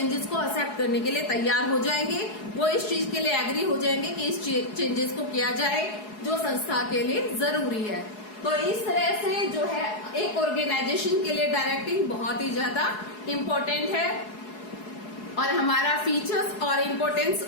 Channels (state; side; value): late; right; 4.7 ms